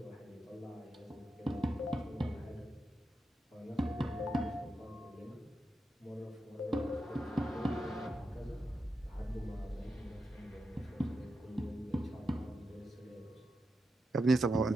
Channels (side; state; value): both; normal; correlation 0.87